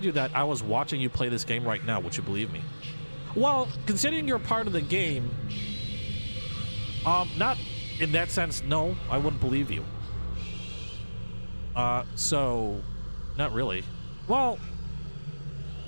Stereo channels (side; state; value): both; inverted; correlation -1.00